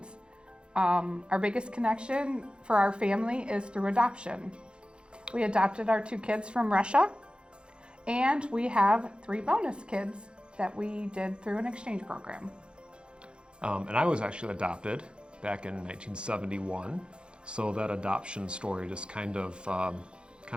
Our biggest connection for our family is through adoption. We adopted our 2 kids from Russia, and we have 3 bonus kids that we did through an exchange program. And I was actually adopted back in 1971, so that adoption story just kind of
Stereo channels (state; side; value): late; left; 0.054 ms